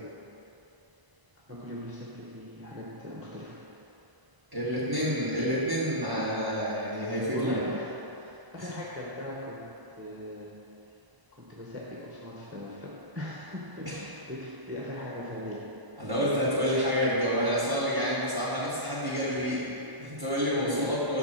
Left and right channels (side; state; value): left; late; 1.0 ms